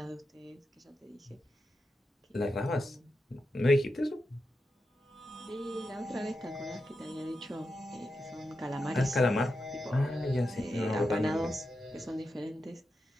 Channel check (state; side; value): normal; both; correlation 0.88